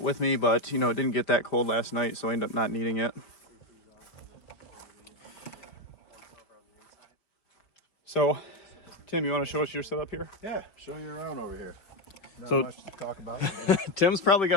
with me, but it didn't get that cold last night, so I ended up not needing it. So, Tim, you want to show us your setup here? Yeah, show you around over here. Not So- much to talk about. Tim's probably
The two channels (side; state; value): right; late; 5.1 ms